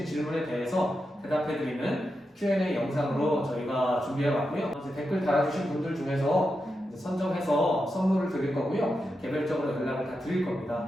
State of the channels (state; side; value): normal; both; correlation 0.88